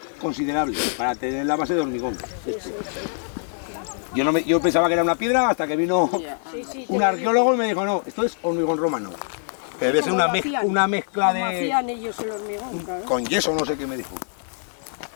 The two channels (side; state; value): right; silent; 63 dB below the other